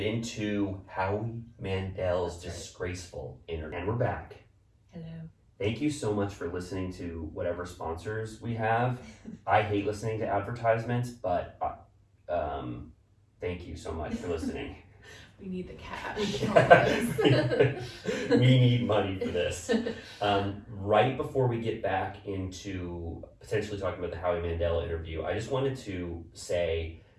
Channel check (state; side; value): identical; both; correlation 1.00